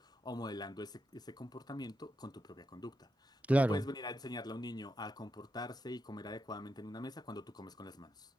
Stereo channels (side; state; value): both; normal; correlation 0.86